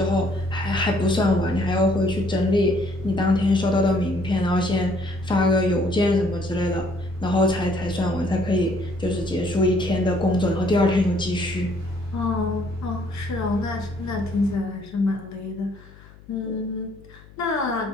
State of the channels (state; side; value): noise; left; hum, 23 dB below the sound